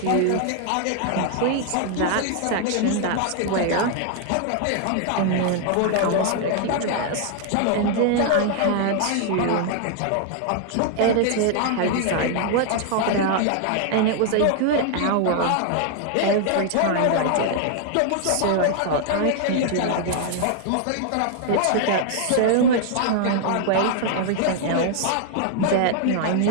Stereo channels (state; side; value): different; both; correlation 0.00